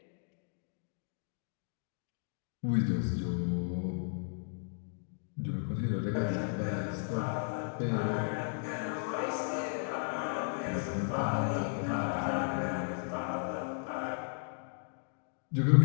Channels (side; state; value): right; silent; digital silence